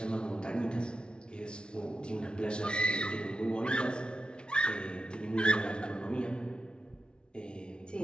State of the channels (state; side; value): late; right; 0.056 ms